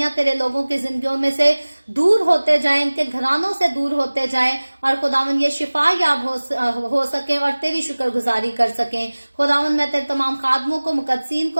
तेरे लोगों की जिंदगियों में से दूर होते जाएं, इनके घरानों से दूर होते जाएं, और खुदावन ये शिफा याब हो सके और तेरी शुक्रगुजारी कर सकें। खुदावन मैं तेरे तमाम खादमों को, मुकद्दसीन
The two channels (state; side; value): inverted; both; correlation -1.00